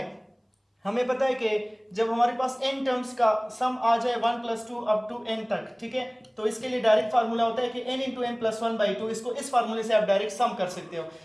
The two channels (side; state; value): both; identical; correlation 1.00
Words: हमें पता है कि जब हमारे पास n टर्म्स का सम आ जाए 1 + 2 अप टू n तक, ठीक है, तो इसके लिए डायरेक्ट फार्मूला होता है कि n × n + 1/2। इसको इस फार्मूले से आप डायरेक्ट सम कर सकते हो।